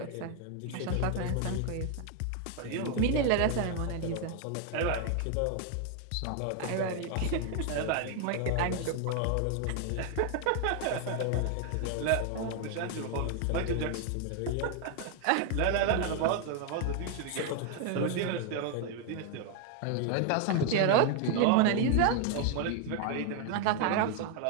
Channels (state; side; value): different; both; correlation 0.01